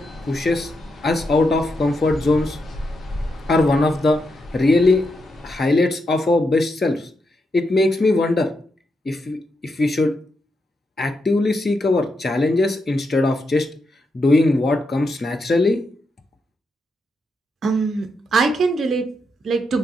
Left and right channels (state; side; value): normal; both; correlation 0.83